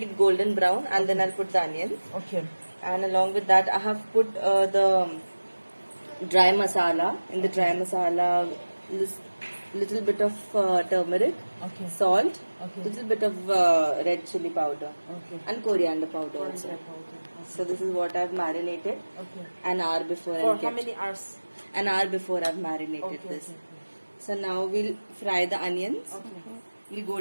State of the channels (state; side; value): inverted; both; correlation -1.00